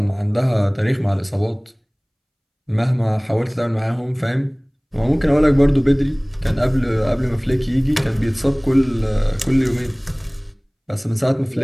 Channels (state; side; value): identical; both; correlation 1.00